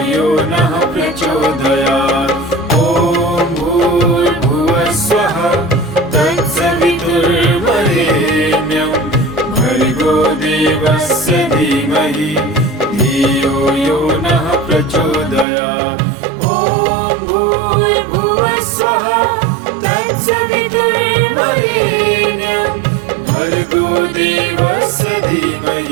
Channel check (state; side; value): drops out; left; at 15.5 s